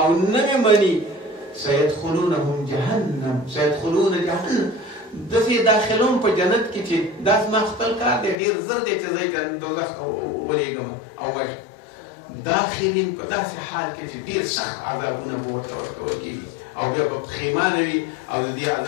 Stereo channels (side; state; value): right; drops out; at 8.3 s